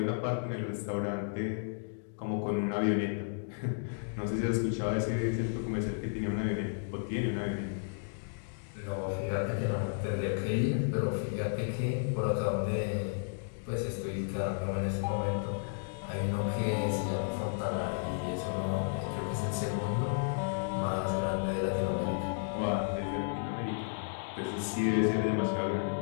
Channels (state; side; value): silent; right; digital silence